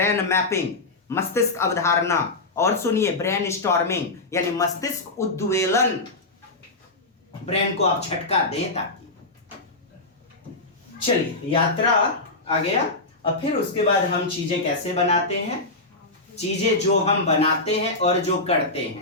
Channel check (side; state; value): right; quieter; 3.1 dB